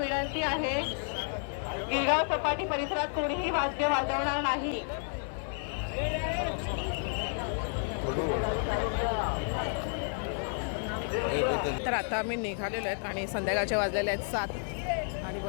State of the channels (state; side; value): silent; right; 56 dB below the other